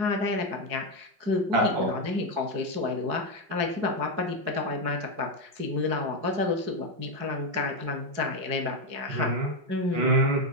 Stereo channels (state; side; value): late; left; 5.4 ms